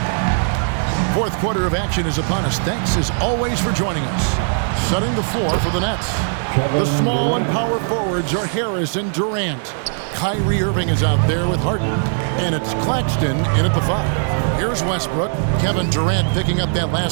Fourth quarter of action is upon us. Thanks as always for joining us. Setting the floor for the Nets. The small and power forwards are Harris and Durant. Kyrie Irving is out there with Harden. And it's Claxton in at the 5. Here's Westbrook. Kevin Durant picking up that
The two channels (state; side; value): silent; left; 66 dB below the other